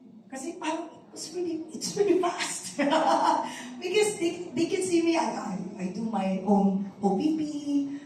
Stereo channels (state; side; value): identical; both; correlation 1.00